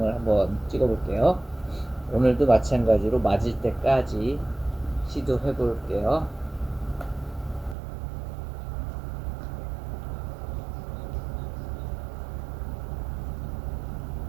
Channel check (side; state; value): left; drops out; at 7.8 s